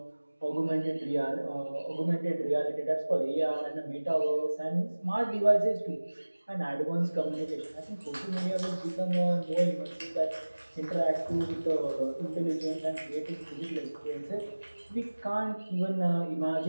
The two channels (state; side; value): inverted; both; correlation -1.00